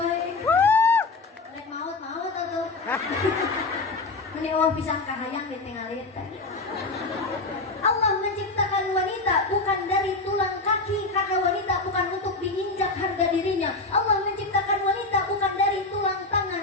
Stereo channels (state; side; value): quieter; right; 3.4 dB